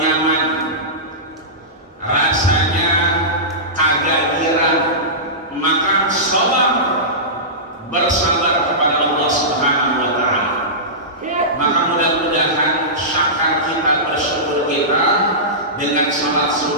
rasanya kagak girang, maka sabar, bersabar kepada Allah Subhanahu wa ta'ala. Maka mudah-mudahan syakar kita, bersyukur kita dengan salat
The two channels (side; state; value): both; normal; correlation -0.18